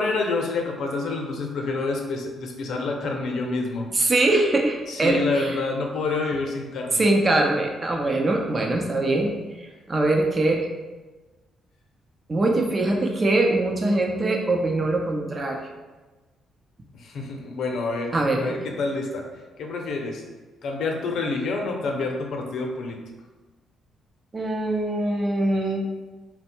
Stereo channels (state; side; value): normal; both; correlation 0.78